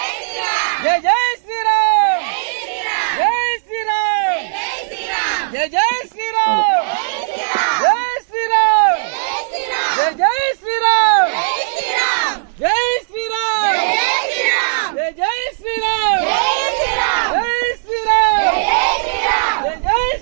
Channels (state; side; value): silent; left; digital silence